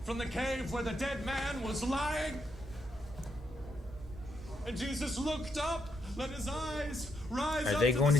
from the cave where the dead man was lying. And Jesus looked up, let his eyes rise up. Are they going to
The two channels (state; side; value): normal; both; correlation 0.78